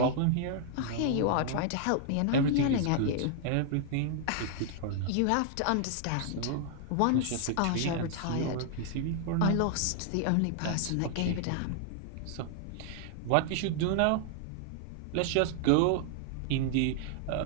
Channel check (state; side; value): different; both; correlation 0.00